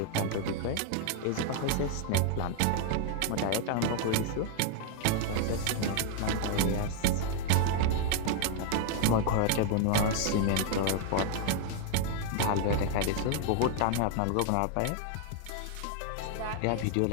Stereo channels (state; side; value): different; both; correlation 0.00